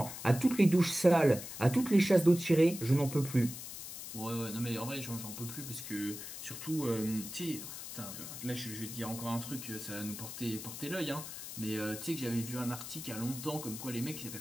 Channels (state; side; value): noise; left; hiss, 10 dB below the sound